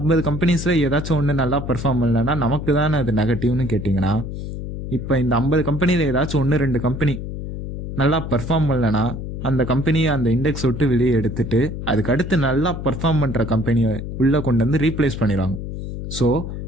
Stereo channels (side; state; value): left; noise; hum, 7 dB below the sound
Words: கம்பெனிஸில் ஏதாச்சும் ஒன்று நல்லா பர்ஃபார்ம் பண்ணலன்னா நமக்கு தானே அது நெகட்டிவ்னு கேட்டிங்கன்னா, இப்போ இந்த 50 கம்பெனியில் ஏதாச்சும் 1-2 கம்பெனி நல்லா பர்ஃபார்ம் பண்ணலன்னா அந்த கம்பெனியை அந்த இண்டெக்ஸ் விட்டு வெளியே எடுத்துட்டு அதுக்கு அடுத்து நல்லா பர்ஃபார்ம் பண்ணுற கம்பெனியை உள்ளே கொண்டு வந்து ரீப்ளேஸ் பண்ணிடுவாங்க. ஸோ